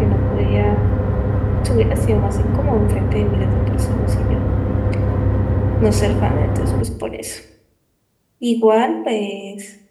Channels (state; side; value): identical; both; correlation 1.00